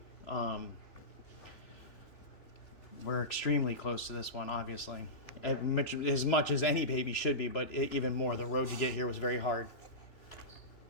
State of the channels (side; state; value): right; late; 3.1 ms